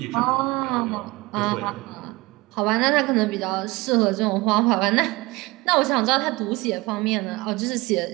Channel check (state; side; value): quieter; left; 22.4 dB